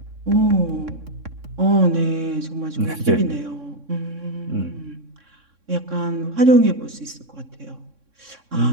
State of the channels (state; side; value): late; left; 3.6 ms